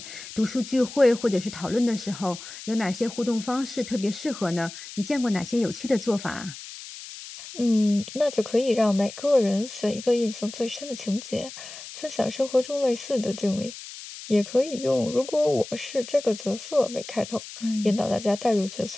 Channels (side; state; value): left; noise; hiss, 13 dB below the sound